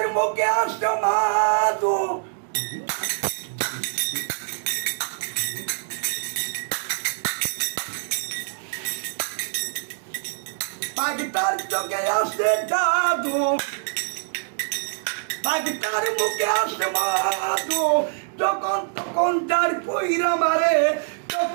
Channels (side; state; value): left; silent; digital silence